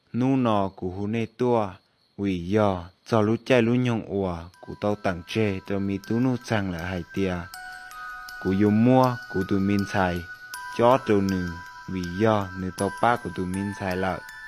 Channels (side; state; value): both; identical; correlation 1.00